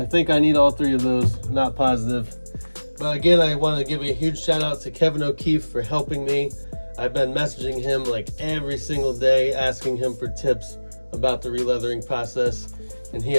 I need all 3 of those, not positive. But again, I want to give a huge shout out to Kevin O'Keefe for helping me. I've been messaging him like every single day, asking him for tips about the releathering process, and he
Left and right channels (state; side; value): inverted; both; correlation -1.00